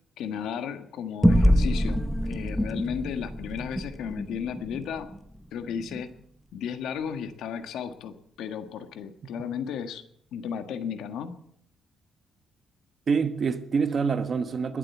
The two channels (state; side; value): normal; both; correlation 0.85